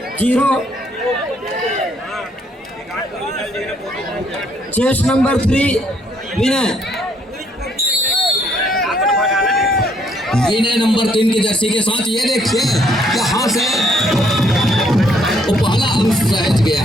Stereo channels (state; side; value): normal; both; correlation 0.68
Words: 0। Chest number 3 Vinay. Vinay number 3 की जर्सी के साथ ये देखिए यहाँ से वो पहला अंक सहज गया